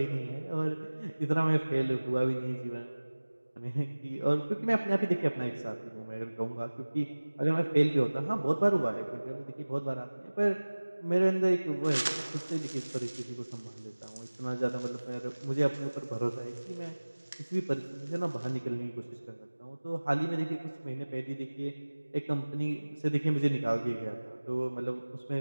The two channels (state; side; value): inverted; both; correlation -1.00